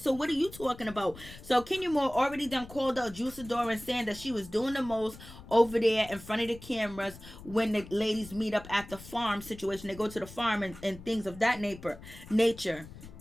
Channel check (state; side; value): noise; left; rumble, 17 dB below the sound